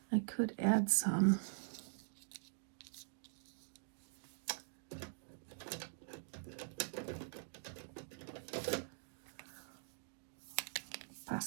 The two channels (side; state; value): left; silent; digital silence